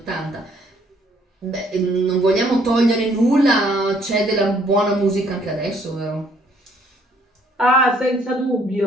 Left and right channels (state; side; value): normal; both; correlation 0.64